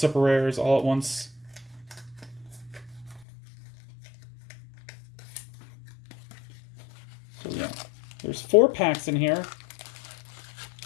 rares all at once. So yeah, there's 4 packs in here,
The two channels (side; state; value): right; drops out; at 3.2 s